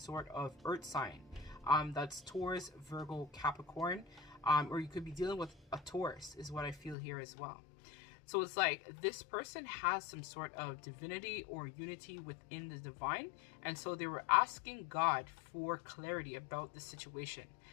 of earth sign that's Taurus, Virgo, Capricorn, or you could be dealing with a Taurus is what I feel here as well. So it's like this person has some sort of divinity or unity within the divine. And so they were asking God for clarity about the situation.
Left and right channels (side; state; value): right; drops out; at 7.0 s